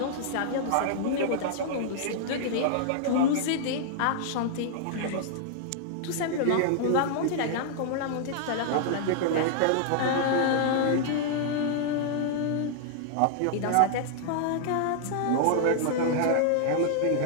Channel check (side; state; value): both; different; correlation -0.01